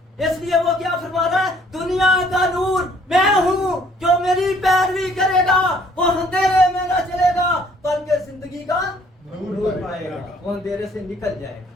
इसलिए वो क्या फरमा रहा है? दुनिया का नूर मैं हूं, जो मेरी पैरवी करेगा वो अंधेरे में ना चलेगा, बल्कि जिंदगी का नूर पाएगा, वो अंधेरे से निकल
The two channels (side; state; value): both; normal; correlation 0.61